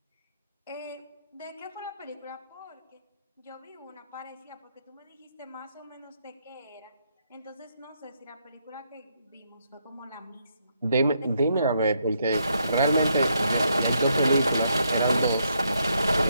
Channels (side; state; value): both; inverted; correlation -0.76